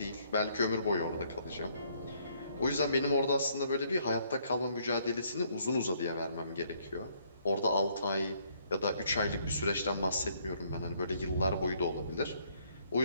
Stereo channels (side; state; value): both; inverted; correlation -0.67